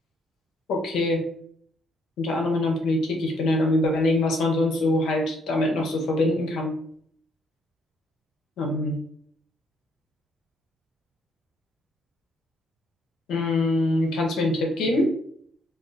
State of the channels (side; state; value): both; normal; correlation 0.70